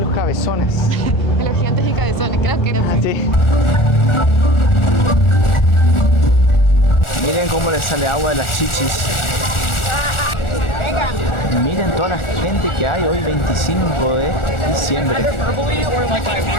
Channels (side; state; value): right; late; 1.4 ms